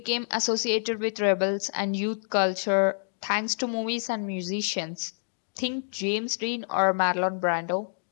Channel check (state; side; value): silent; right; digital silence